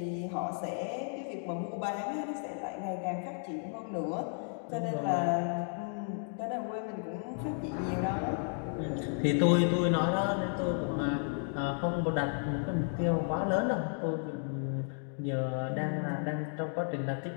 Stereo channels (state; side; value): silent; right; 56 dB below the other